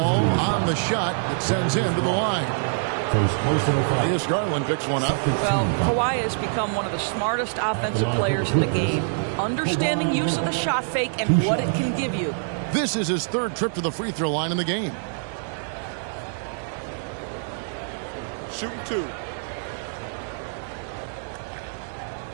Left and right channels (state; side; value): silent; left; 62 dB below the other